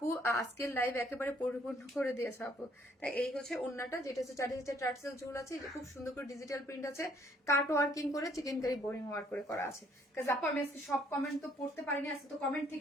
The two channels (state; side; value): normal; both; correlation 0.64